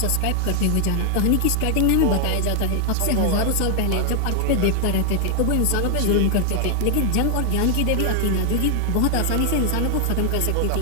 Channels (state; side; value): different; both; correlation 0.00